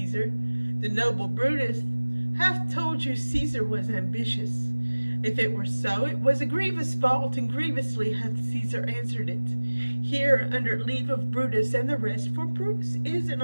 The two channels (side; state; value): both; inverted; correlation -1.00